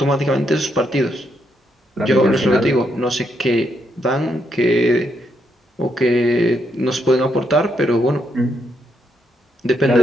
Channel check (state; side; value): normal; both; correlation 0.77